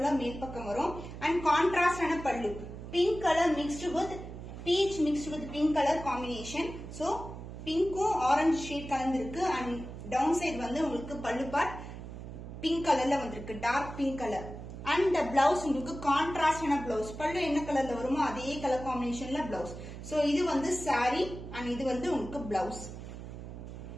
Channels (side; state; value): right; noise; hum, 11 dB below the sound